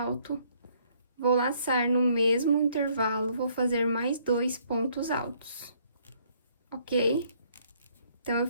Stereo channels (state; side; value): inverted; both; correlation -0.66